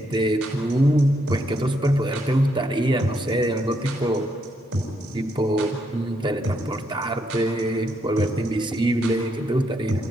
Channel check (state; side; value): normal; both; correlation 0.77